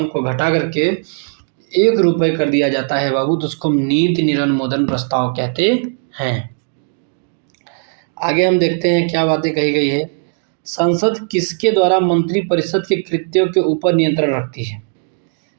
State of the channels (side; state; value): left; silent; digital silence